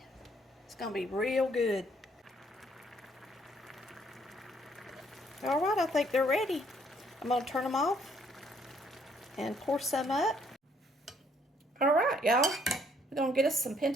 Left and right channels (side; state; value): both; normal; correlation 0.67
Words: It's going to be real good. All right, I think they're ready. I'm going to turn them off and pour some up. All right, y'all. We're going to get us some